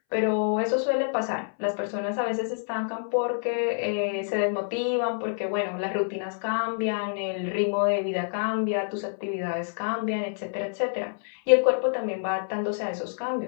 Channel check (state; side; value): silent; right; 60 dB below the other